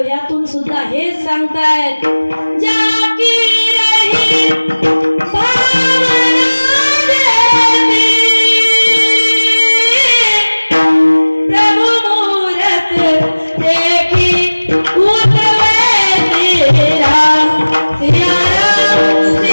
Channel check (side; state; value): both; inverted; correlation -1.00